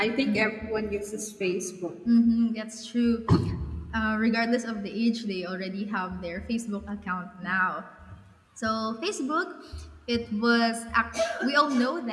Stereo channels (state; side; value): identical; both; correlation 1.00